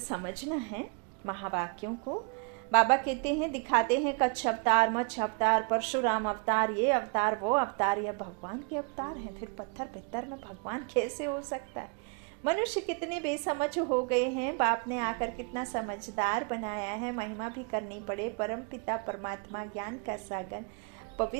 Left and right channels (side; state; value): left; quieter; 35.0 dB